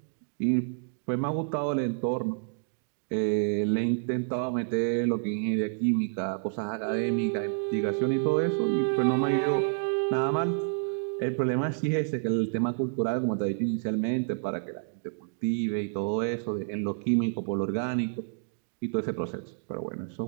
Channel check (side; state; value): left; silent; digital silence